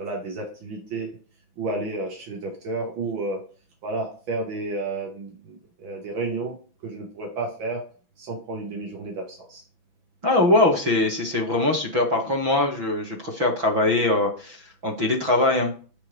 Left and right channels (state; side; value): late; left; 6.0 ms